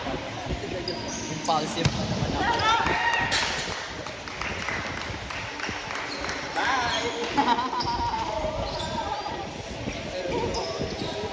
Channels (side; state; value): both; identical; correlation 1.00